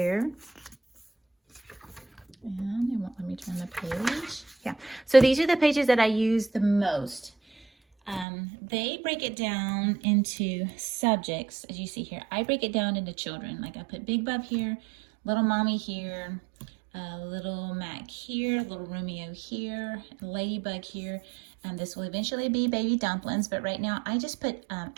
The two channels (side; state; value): left; drops out; at 8.2 s